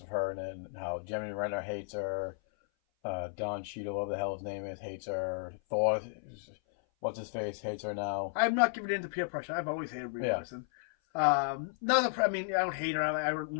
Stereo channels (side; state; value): right; silent; 55 dB below the other